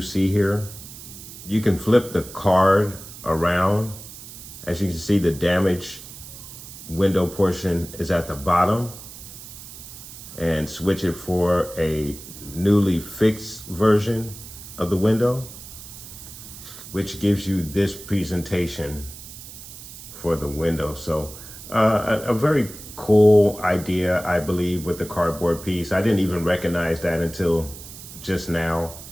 here, you can flip the card around. As you can see, the damaged window portion is at the bottom, and switch it for a newly fixed version of the window, which gives you this presentation for the window. So a very cool idea, I believe, with the cardboard piece. I didn't even recognize that until just now,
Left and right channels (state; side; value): noise; right; hiss, 14 dB below the sound